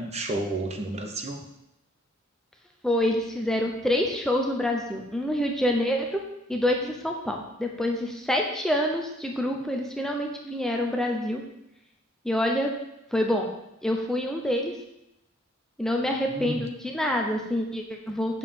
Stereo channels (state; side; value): normal; both; correlation 0.66